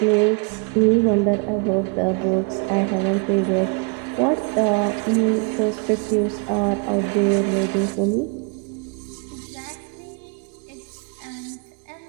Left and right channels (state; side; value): quieter; left; 33.6 dB